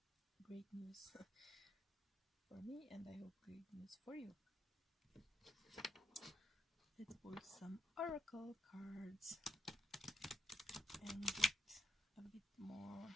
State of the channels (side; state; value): both; normal; correlation 0.77